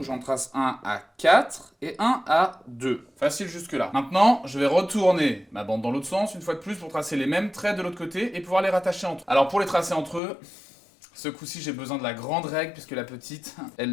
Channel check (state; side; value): drops out; right; at 10.2 s